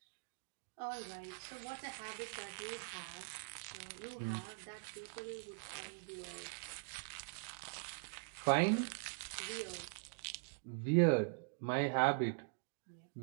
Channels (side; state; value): left; silent; digital silence